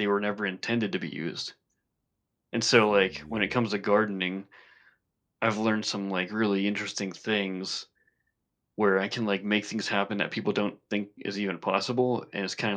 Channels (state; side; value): identical; both; correlation 1.00